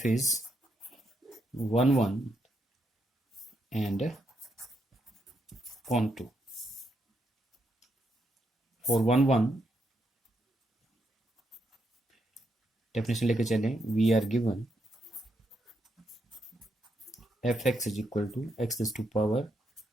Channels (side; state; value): both; normal; correlation 0.80